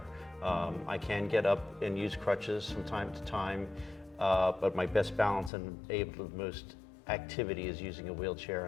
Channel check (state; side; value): drops out; right; at 5.5 s